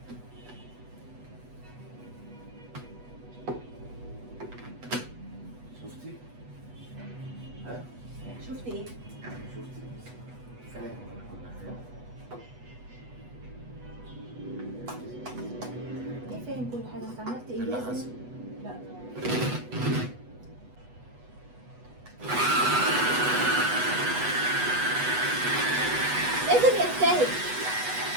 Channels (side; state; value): left; late; 8.1 ms